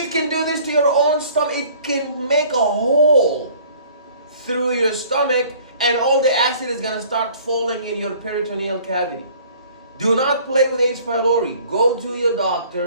can do this to your own stomach. It can make a hole through your stomach, and all the acid is going to start falling in your peritoneal cavity. Do not play with H. pylori. Go to your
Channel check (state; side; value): inverted; both; correlation -0.53